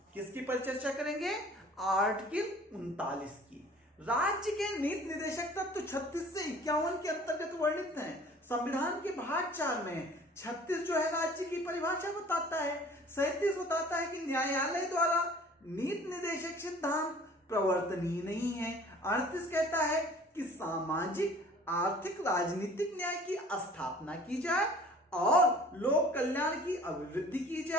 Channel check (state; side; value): normal; both; correlation 0.49